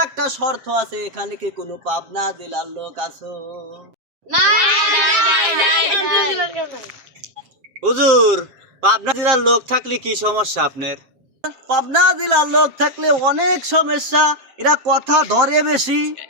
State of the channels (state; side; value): late; left; 7.7 ms